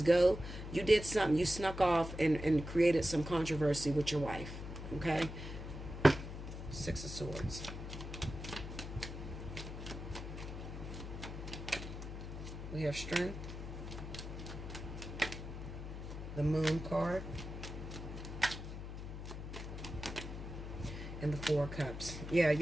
go, you did something. You snuck off and created some controversy with your wife. Okay? Six of Swords. We have Strength. The Moon card. And the Four of Cups. Yeah,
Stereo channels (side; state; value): left; noise; hum, 8 dB below the sound